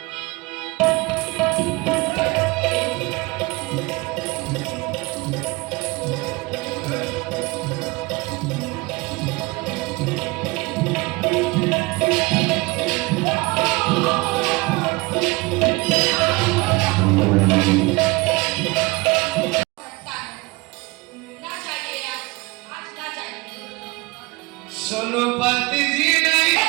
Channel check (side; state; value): left; quieter; 24.3 dB